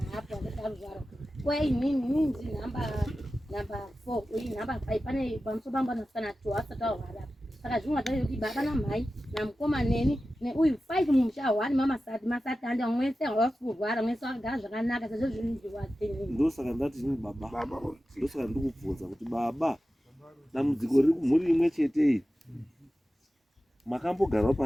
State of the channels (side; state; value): both; normal; correlation 0.94